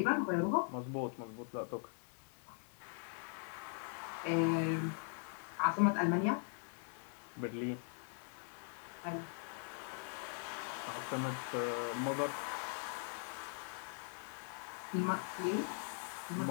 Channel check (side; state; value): right; silent; 50 dB below the other